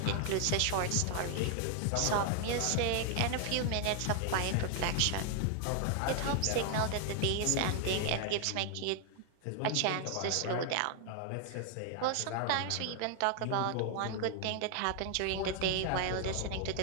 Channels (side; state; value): both; different; correlation 0.00